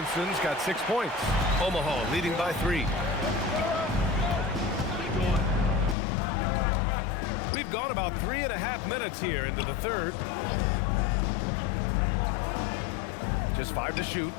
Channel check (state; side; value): drops out; right; at 6.0 s